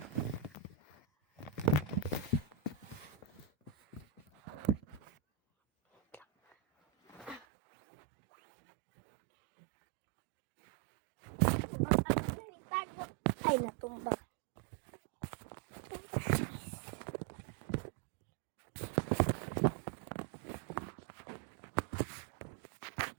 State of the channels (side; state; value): left; drops out; at 7.4 s